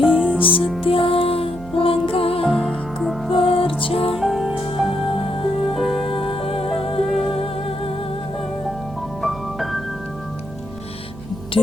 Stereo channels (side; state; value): right; noise; hum, 16 dB below the sound